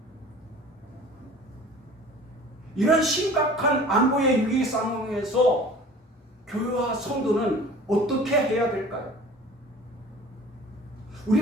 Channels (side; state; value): both; normal; correlation 0.44